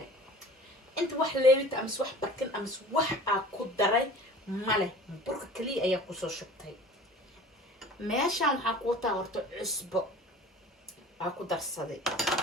inta wax leebita ama wax barkin ama wax ku daray male burka kaliya ayaa ku soo shubtay meeshaan waxa ku wataa horta cusbo ku darsaday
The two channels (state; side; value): normal; both; correlation 0.43